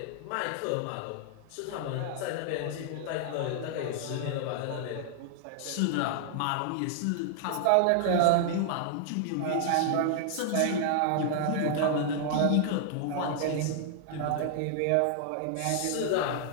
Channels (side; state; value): both; different; correlation 0.00